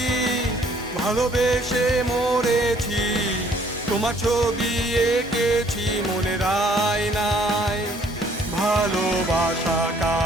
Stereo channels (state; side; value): normal; both; correlation 0.61